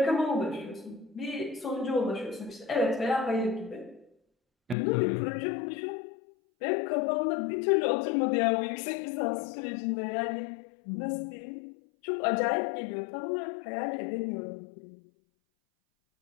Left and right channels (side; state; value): right; drops out; at 4.8 s